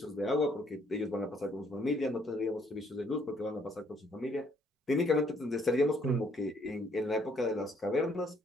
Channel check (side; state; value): both; normal; correlation 0.67